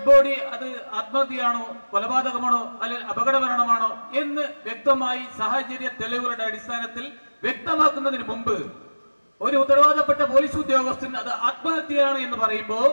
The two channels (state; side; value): inverted; both; correlation -1.00